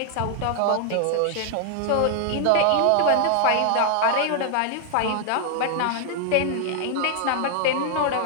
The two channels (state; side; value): different; both; correlation 0.00